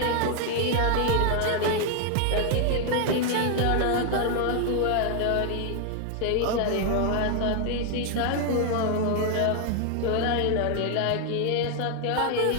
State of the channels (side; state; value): both; different; correlation 0.00